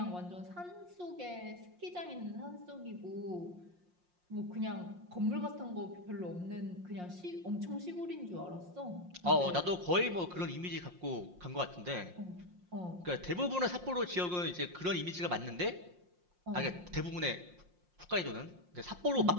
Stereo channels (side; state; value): left; late; 5.6 ms